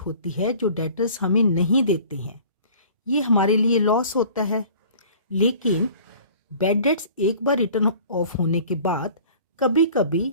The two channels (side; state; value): both; inverted; correlation -0.48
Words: है जो डेटर्स हमें नहीं देते हैं। ये हमारे लिए लॉस होता है, लेकिन बैड डेट्स एक बार रिटर्न ऑफ होने के बाद कभी कभी